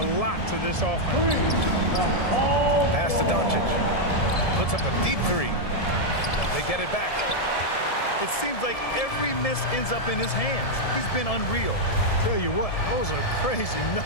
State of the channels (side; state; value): right; late; 1.7 ms